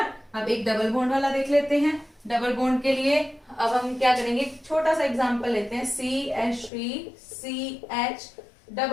अब एक डबल बॉन्ड वाला देख लेते हैं। डबल बॉन्ड के लिए अब हम क्या करेंगे, छोटा सा एग्जांपल लेते हैं, CH3, CH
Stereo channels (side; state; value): right; drops out; at 6.7 s